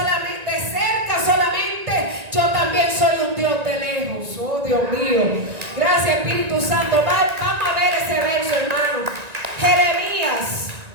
de cerca solamente? Yo también soy un Dios de lejos. Oh, Dios mío. Gracias, Espíritu Santo. Vamos a ver ese verso, hermano.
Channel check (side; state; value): left; late; 1.9 ms